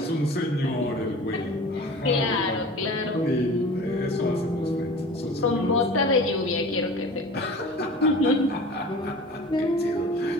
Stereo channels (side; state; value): both; normal; correlation 0.39